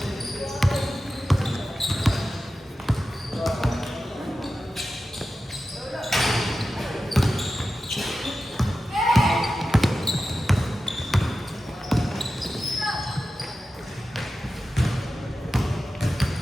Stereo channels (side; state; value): both; normal; correlation 0.93